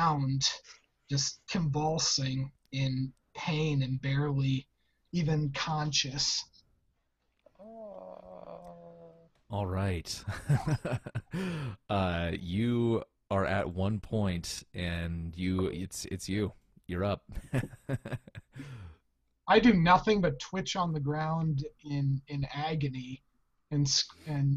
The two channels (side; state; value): both; identical; correlation 1.00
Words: just convulsing in pain and barely even conscious. All right. You are at 1 point, and it's you. You're up. I do nothing but twitch on the ground in agony and